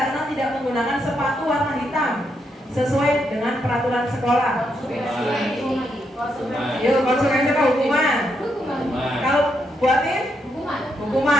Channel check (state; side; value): normal; both; correlation 0.80